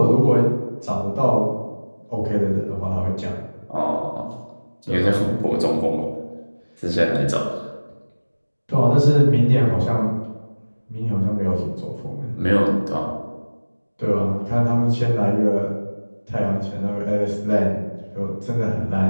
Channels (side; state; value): both; inverted; correlation -1.00